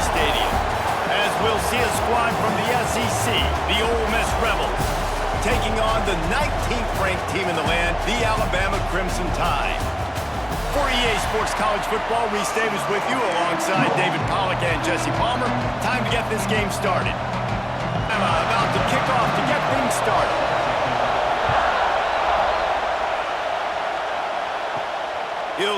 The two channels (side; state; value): both; identical; correlation 1.00